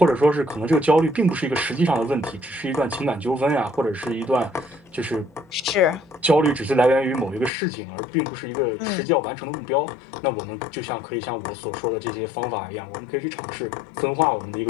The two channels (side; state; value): right; drops out; at 7.5 s